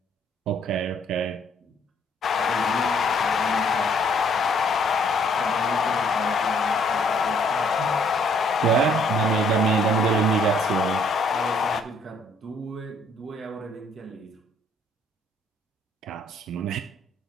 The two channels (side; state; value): both; normal; correlation 0.64